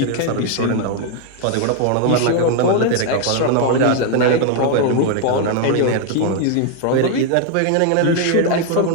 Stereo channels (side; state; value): both; different; correlation 0.00